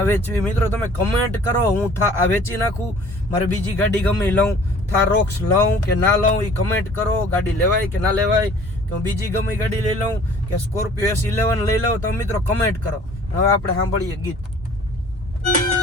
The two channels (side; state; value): both; normal; correlation 0.51